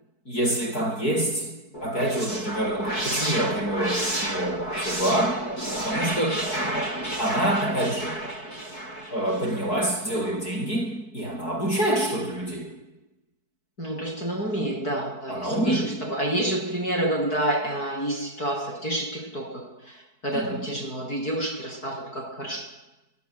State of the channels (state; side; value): late; right; 4.6 ms